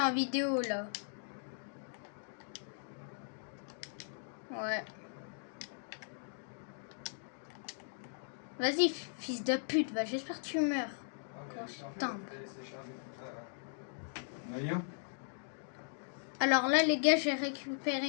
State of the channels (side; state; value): right; silent; digital silence